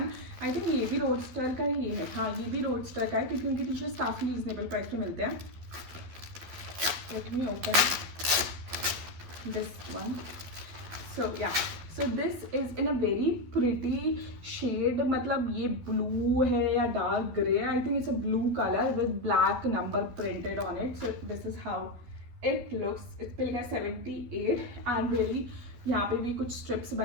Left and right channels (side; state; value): left; late; 12 ms